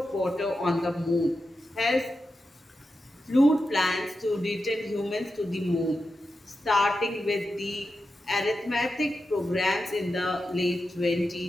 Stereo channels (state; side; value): normal; both; correlation 0.89